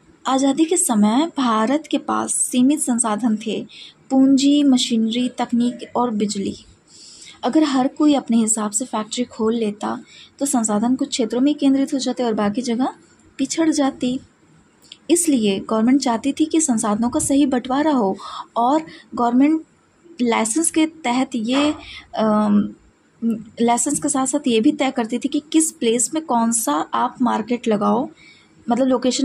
आज़ादी के समय भारत के पास सीमित संसाधन थे, पूंजी, मशीनरी, तकनीक और बिजली। अगर हर कोई अपने हिसाब से फैक्ट्री खोल लेता तो संसाधन कुछ क्षेत्रों में केंद्रित हो जाते और बाकी जगह पिछड़ जाती। इसलिए गवर्नमेंट चाहती थी कि संसाधनों का सही बंटवारा हो, और गवर्नमेंट लाइसेंस के तहत ये लाइसेंस के साथ साथ ये भी तय करती थी कि किस प्लेस में कौन सा आप मार्केट लगाओ, मतलब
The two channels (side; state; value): both; identical; correlation 1.00